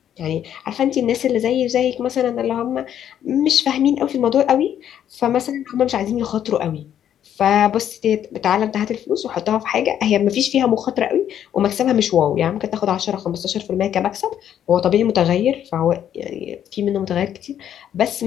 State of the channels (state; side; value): quieter; right; 10.1 dB